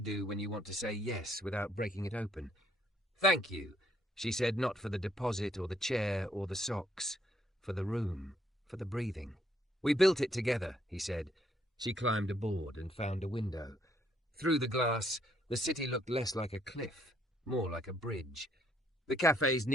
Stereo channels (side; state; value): both; normal; correlation 0.69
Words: when you want to say yes without breaking it open. "Thank you," she said, not for the deposit or the chair or the socks, for the room, for the breathing. "We built it together," he said. She climbed aboard and found a window. Through the glass, the city looked less like a cliff, more like a bridge. The cafe's